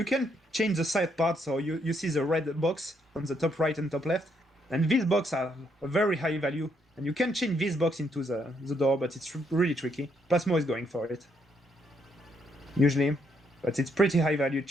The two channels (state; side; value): normal; both; correlation 0.74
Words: can change the side part, so you see the red box on the top right and top left. And these boxes are a very high value. And you can change this box into the door, but it's really tricky. Plasmo is going for it. Usually. But it's pretty high value